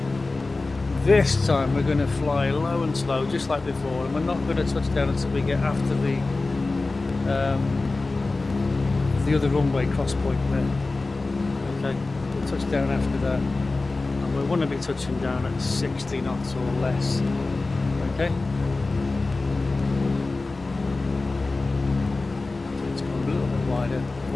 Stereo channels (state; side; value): quieter; right; 3.4 dB